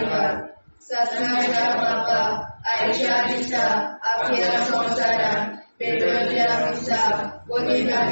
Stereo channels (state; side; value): inverted; both; correlation -1.00